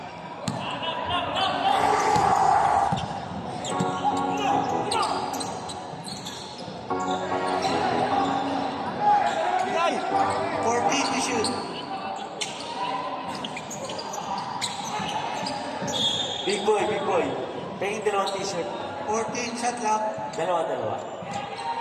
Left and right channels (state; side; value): identical; both; correlation 1.00